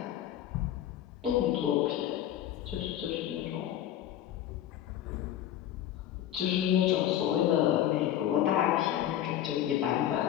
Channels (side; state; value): right; quieter; 11.7 dB